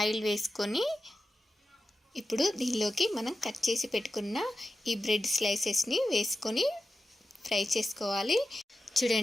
వేసుకొని ఇప్పుడు దీనిలోకి మనం కట్ చేసి పెట్టుకున్న ఈ బ్రెడ్ స్లైసెస్ని వేసుకొని ఫ్రై చేసుకోవాలి.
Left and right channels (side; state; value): both; normal; correlation 0.92